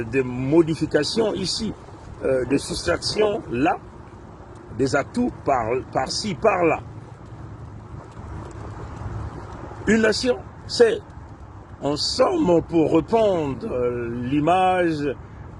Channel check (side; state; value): both; identical; correlation 1.00